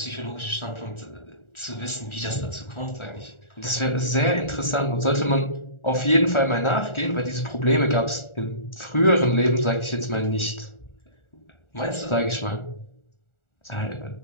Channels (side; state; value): right; late; 1.4 ms